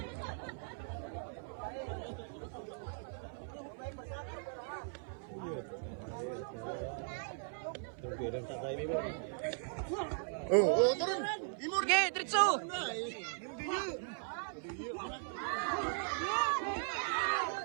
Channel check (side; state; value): left; silent; 52 dB below the other